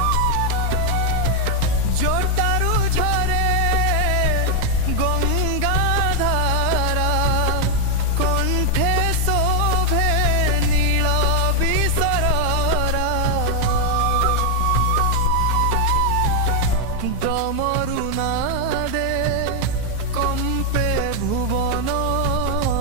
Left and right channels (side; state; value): both; different; correlation 0.00